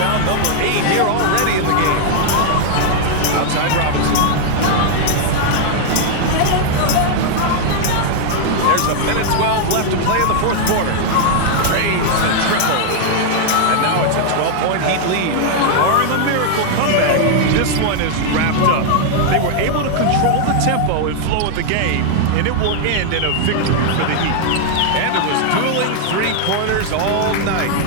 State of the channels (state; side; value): different; both; correlation 0.00